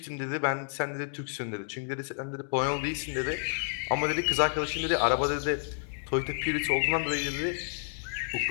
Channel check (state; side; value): silent; right; digital silence